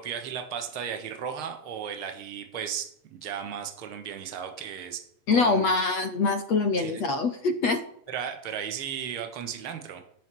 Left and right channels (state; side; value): late; right; 8.3 ms